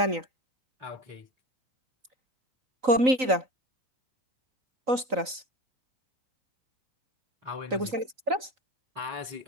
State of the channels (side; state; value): left; late; 3.9 ms